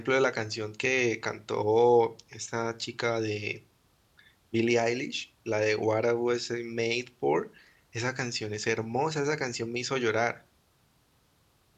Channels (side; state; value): both; identical; correlation 1.00